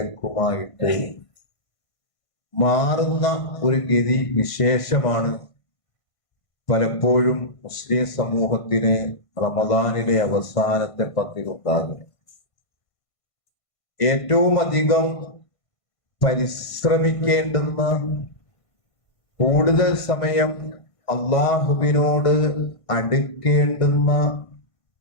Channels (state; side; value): late; right; 1.5 ms